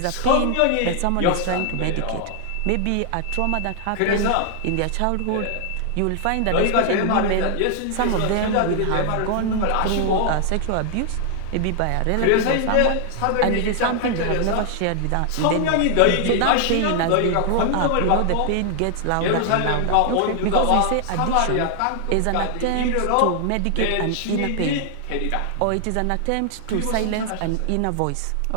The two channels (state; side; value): different; both; correlation 0.00